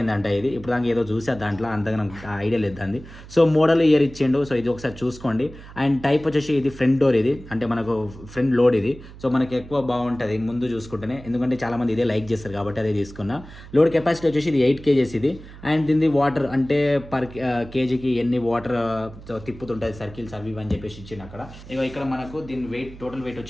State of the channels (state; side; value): noise; right; hum, 17 dB below the sound